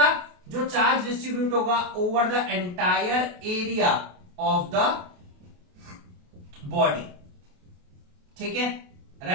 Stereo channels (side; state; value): left; late; 28 ms